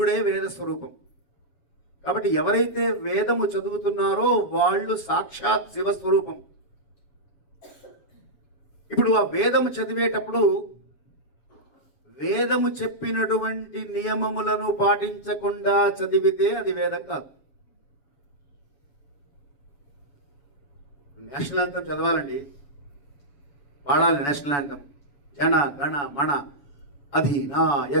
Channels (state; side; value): late; right; 7.1 ms